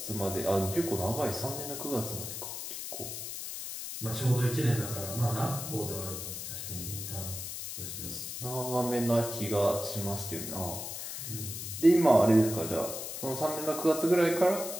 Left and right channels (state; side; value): noise; left; hiss, 7 dB below the sound